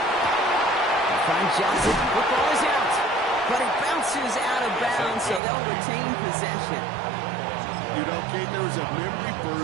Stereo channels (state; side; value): drops out; left; at 5.4 s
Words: Find Johnson. Football is out. But it bounces out of bounds, so they'll retain possession. You know, Kate, there was a memory